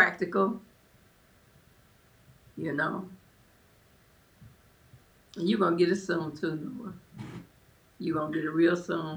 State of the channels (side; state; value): both; identical; correlation 1.00